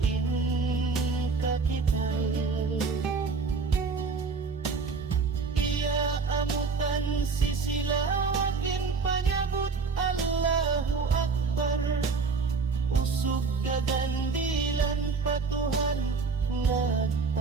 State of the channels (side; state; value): left; quieter; 4.7 dB